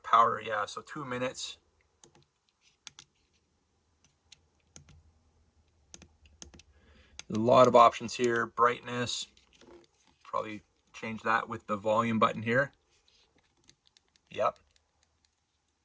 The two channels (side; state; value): both; identical; correlation 1.00